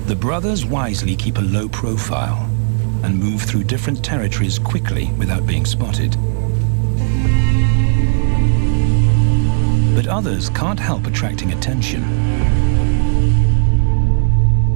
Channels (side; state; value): left; silent; digital silence